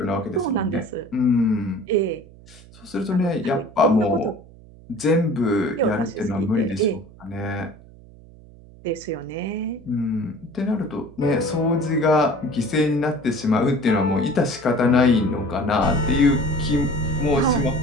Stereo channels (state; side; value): noise; right; hum, 22 dB below the sound